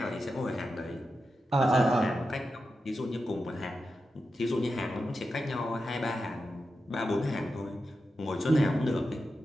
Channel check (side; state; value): both; normal; correlation 0.90